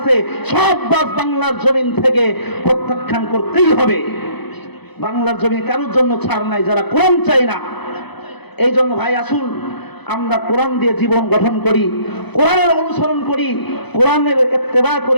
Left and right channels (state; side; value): late; right; 0.98 ms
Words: সব বাজ বাংলার জমিন থেকে প্রত্যাখ্যান করতেই হবে। বাংলার জমিনে কারোর জন্য ছাড় নাই যারা কোরআন চাই না। এই জন্য ভাই আসুন আমরা কোরআন দিয়ে জীবন গঠন করি, কোরআনের অনুসরণ করি, কোরআনের ইত্তেবা